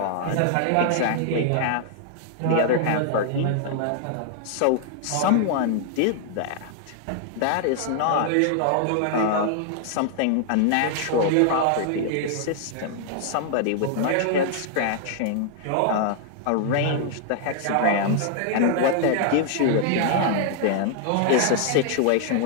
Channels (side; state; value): both; different; correlation 0.00